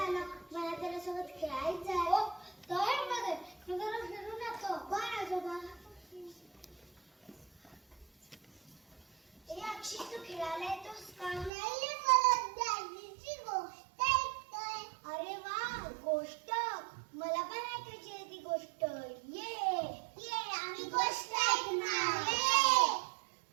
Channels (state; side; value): drops out; left; at 11.5 s